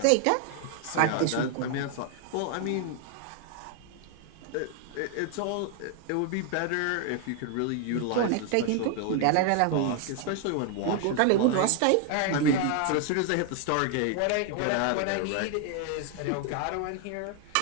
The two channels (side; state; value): both; different; correlation 0.00